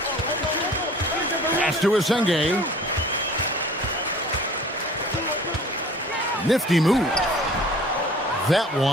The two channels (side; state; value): both; normal; correlation 0.47